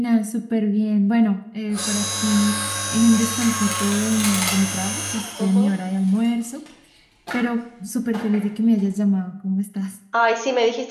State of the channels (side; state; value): both; identical; correlation 1.00